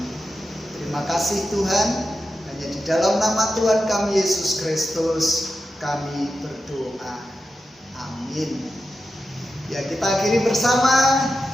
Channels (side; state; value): both; normal; correlation 0.90